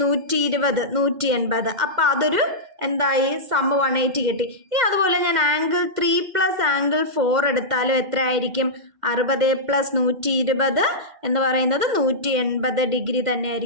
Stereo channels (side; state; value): left; late; 2.1 ms